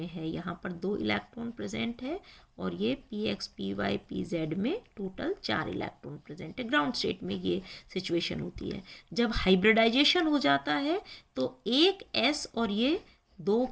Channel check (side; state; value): both; identical; correlation 1.00